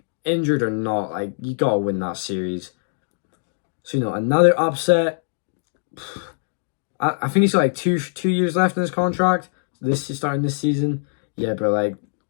injured or not, like you gotta win that series. So another upset. I think he's got like two years left in his contract. This is starting this season. Yeah, bro. Like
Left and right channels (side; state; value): right; silent; digital silence